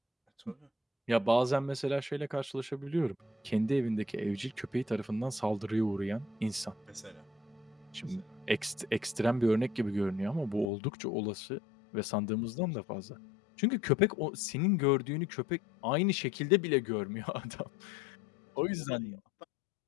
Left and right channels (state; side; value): drops out; right; at 10.7 s